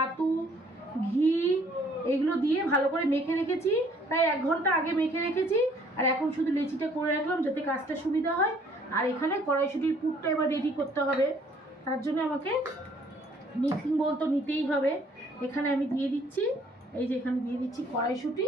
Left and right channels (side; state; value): both; normal; correlation 0.61